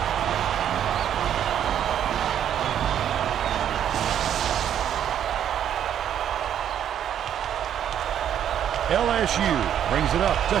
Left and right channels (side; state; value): left; quieter; 9.8 dB